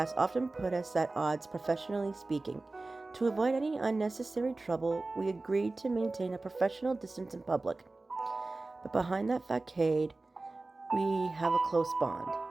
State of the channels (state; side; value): quieter; left; 3.2 dB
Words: often put us at odds professionally speaking. To avoid any unnecessary trouble, we agreed to maintain a professional distance in public. But behind that facade, we have a close bond.